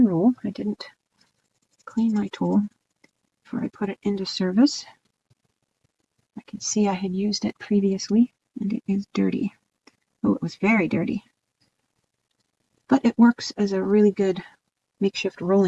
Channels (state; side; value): identical; both; correlation 1.00